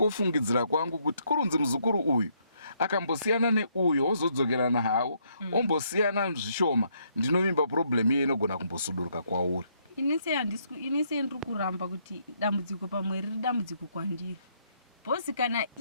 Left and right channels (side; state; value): both; inverted; correlation -0.72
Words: kwangu kuti kurunzi muzukuru uyu akambosiyana neuyo ozodzokerana hawo ombosiyana zvishoma, ndinovimba problem iye inogona kumbosuduruka kwauri. Inise ndiri kuramba kuti dambudziko pamwe riri dambudziko kwandiri. Bosi kana